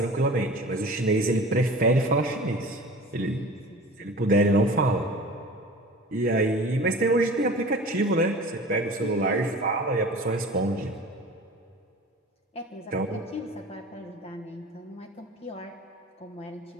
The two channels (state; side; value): normal; both; correlation 0.39